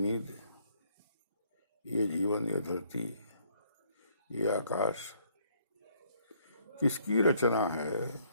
ये जीवन, ये धरती, ये आकाश किसकी रचना है,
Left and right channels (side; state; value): both; inverted; correlation -0.65